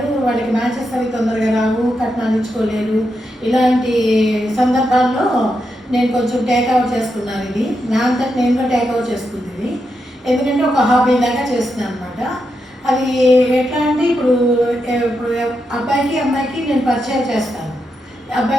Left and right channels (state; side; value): normal; both; correlation 0.85